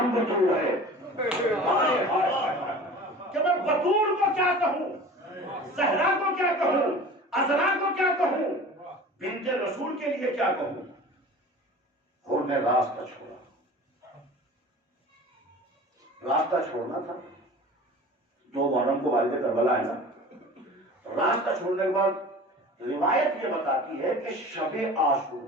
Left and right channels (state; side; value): normal; both; correlation 0.40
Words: بطول ہے۔ کہ میں بطول کو کیا کہوں، زہرا کو کیا کہوں، عذرا کو کیا کہوں، بنت رسول کے لیے کیا کہوں۔ حر نے راستہ چھوڑا، راستہ چھوڑنا تھا، 2 محرم کو والد کربلا ہے نا، راستہ چھوڑنے کے بعد روایت یہ بتاتی ہے کہ شب عاشور